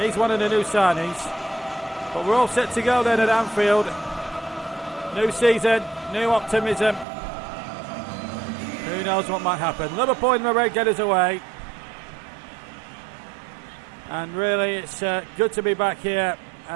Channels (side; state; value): left; drops out; at 7.1 s